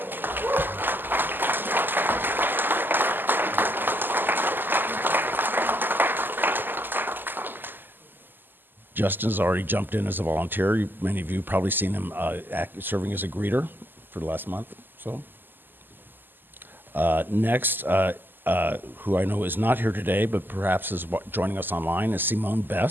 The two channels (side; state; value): left; late; 0.092 ms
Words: Justin's already jumped in as a volunteer. Many of you probably seen him serving as a greeter for the last month. So next, who I know is not here today, but perhaps is joining us online, is Simone